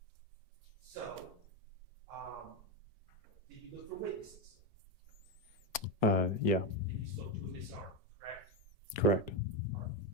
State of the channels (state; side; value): normal; both; correlation 0.11